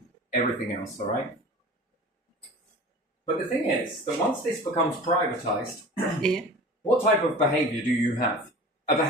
everything else, all right? But the thing is that once this becomes privatised, Yeah. what type of behaviour do you have? A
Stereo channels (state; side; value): normal; both; correlation 0.39